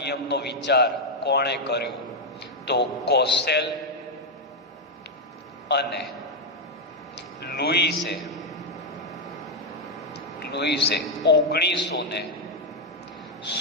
વિચાર કોણે કર્યો? તો કોસેલ અને લુઈસે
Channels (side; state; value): both; normal; correlation 0.00